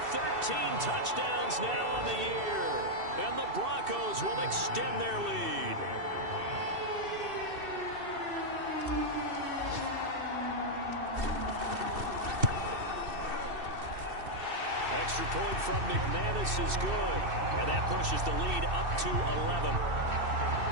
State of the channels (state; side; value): late; left; 2.7 ms